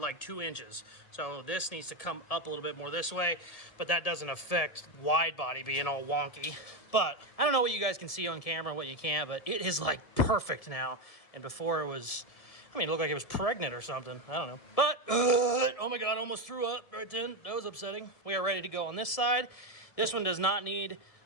2 inches. So this needs to come up a little bit more this way, but that doesn't affect wide body being all wonky. But I don't know what you guys can see on camera, what you can't, but it is like perfect now. And before it was, I mean, it looked like it was pregnant or something. I don't know. But, oh my God, almost threw up right then. That was upsetting. We are ready to go on this side. This one does not need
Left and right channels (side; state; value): right; late; 1.7 ms